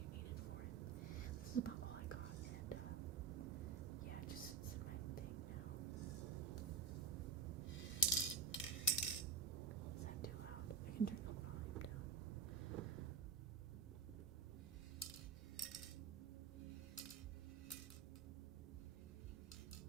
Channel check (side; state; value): left; quieter; 4.8 dB